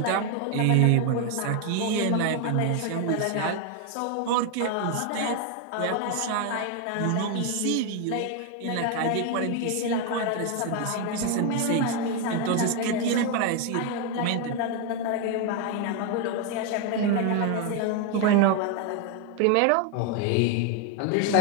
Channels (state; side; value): different; both; correlation 0.01